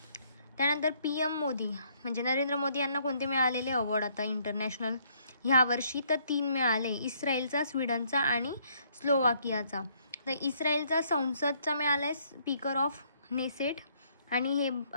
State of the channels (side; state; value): both; inverted; correlation -0.67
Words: त्यानंतर PM मोदी म्हणजे नरेंद्र मोदी यांना कोणते मिळालेले अवॉर्ड आता इंटरनॅशनल ह्या वर्षी तर 3 मिळाले. इस्रायलचा, स्वीडनचा आणि स्लोवाकियाचा. तर इस्रायलचा संसदचा मिळाला आहे स्पीकर ऑफ नेसेट आणि हे